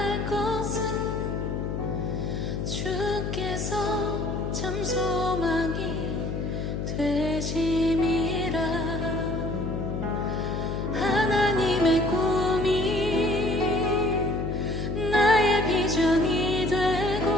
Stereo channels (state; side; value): noise; left; hum, 3 dB below the sound